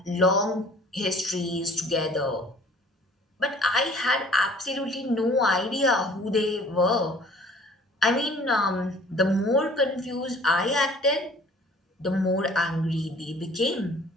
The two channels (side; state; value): both; normal; correlation 0.52